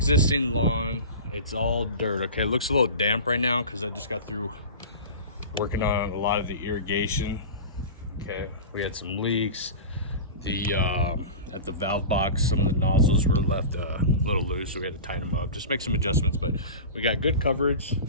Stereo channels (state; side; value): inverted; both; correlation -0.31